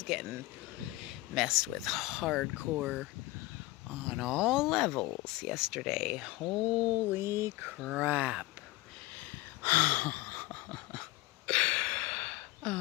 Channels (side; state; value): right; quieter; 19.4 dB